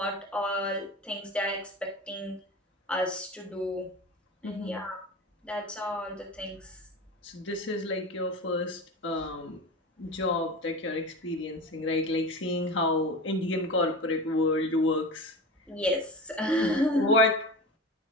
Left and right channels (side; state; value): both; normal; correlation 0.30